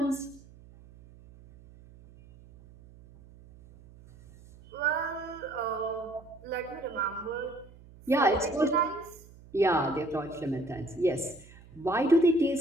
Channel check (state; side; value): noise; right; hum, 22 dB below the sound